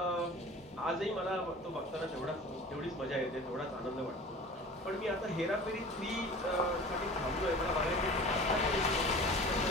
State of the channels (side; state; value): both; normal; correlation 0.40